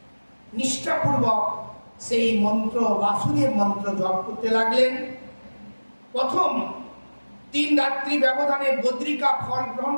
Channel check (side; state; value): both; inverted; correlation -1.00